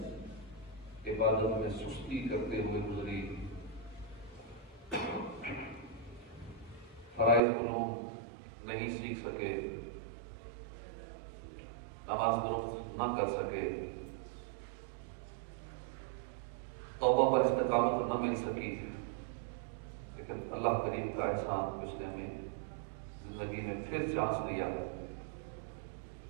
عبادت میں سستی کرتے ہوئے گزری، فرائض علوم نہیں سیکھ سکے، نماز درست نہ کر سکے، توبہ پر استقامت نہ مل سکی، لیکن اللہ کریم کا احسان اس نے ہمیں زندگی میں پھر چانس دیا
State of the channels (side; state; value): left; drops out; at 7.4 s